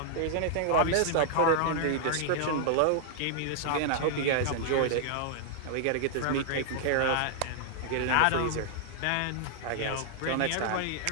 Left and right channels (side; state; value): both; different; correlation -0.01